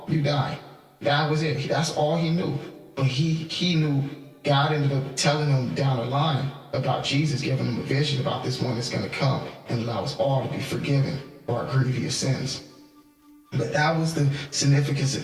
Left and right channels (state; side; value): identical; both; correlation 1.00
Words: you die. That was it. That's all he knew. But he knew God ended up telling him down the line about Jesus, giving him a vision about this one that's going to come and allow us all to be forgiven for our grievous sins. But that was the significance